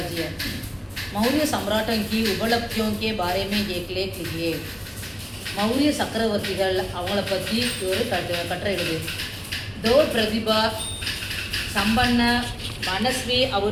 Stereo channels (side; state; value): both; identical; correlation 1.00